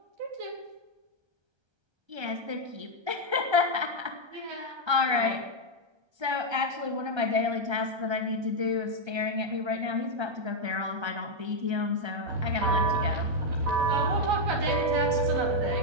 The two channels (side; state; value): left; late; 1.3 ms